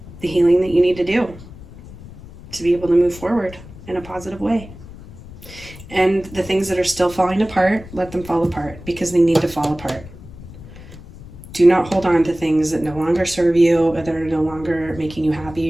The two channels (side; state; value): left; noise; rumble, 17 dB below the sound